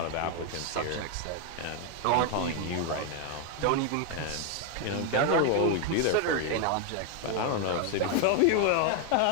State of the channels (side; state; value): both; different; correlation 0.01